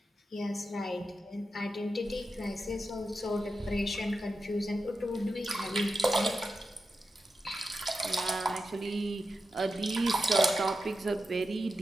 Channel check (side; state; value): both; normal; correlation 0.90